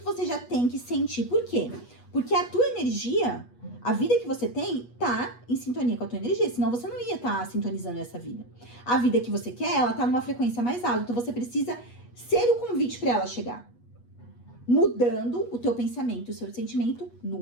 você já tem que sentir. Por quê? Porque a tua energia, a vida que você tem, tá em sintonia com a tua energia. Senão você não ia estar sintonizando essa vida. A vida que você quer, ela tá numa frequência mais alta. Então você precisa ser o convite para ela chegar. Mudando o teu pensamento, o seu sentimento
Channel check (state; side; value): late; right; 8.3 ms